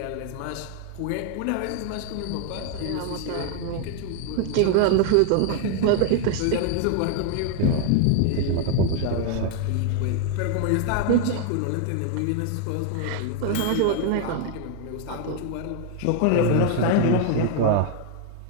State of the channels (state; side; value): different; both; correlation 0.00